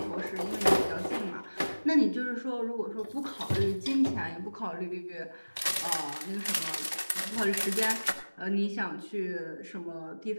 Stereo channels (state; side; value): inverted; both; correlation -1.00